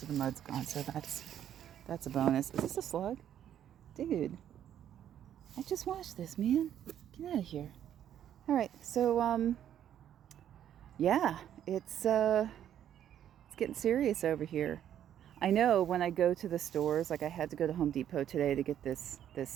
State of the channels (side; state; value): left; quieter; 10.3 dB